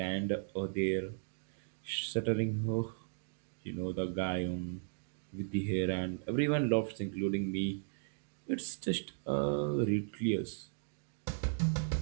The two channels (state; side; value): silent; left; digital silence